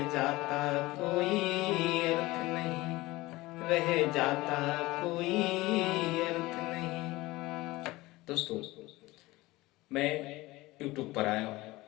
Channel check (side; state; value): right; quieter; 19.9 dB